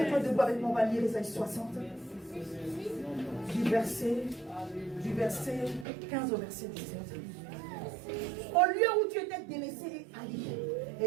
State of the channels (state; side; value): drops out; left; at 5.9 s